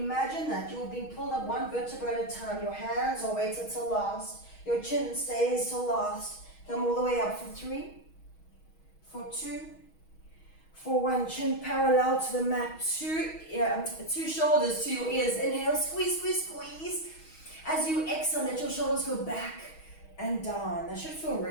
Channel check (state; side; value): late; right; 6.3 ms